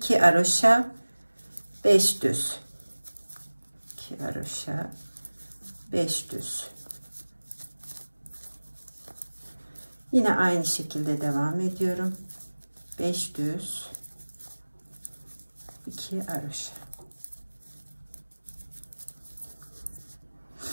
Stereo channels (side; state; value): both; inverted; correlation -1.00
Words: haroşa, 5 düz. 2 haroşa, 5 düz. Yine aynı şekilde devam ediyorum. 5 düz, 2 haroşa.